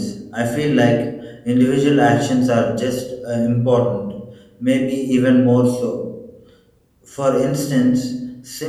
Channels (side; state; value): both; identical; correlation 1.00